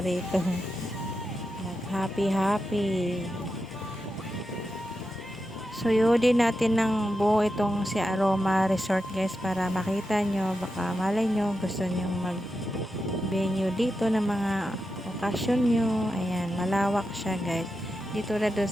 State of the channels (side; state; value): both; normal; correlation 0.89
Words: rito. Nag happy. Suyudin natin ng buo itong si Aroma Resort guys para makita nyo, baka malay nyo gusto nyo mag venue dito ng mga okasyon nyo. Ayan, malawak siya guys. Dito na doon